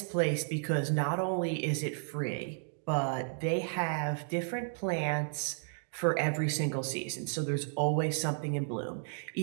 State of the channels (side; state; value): left; silent; digital silence